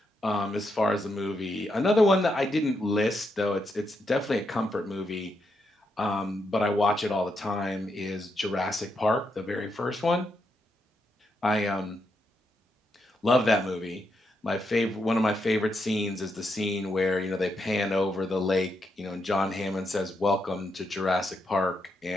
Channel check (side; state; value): both; normal; correlation 0.81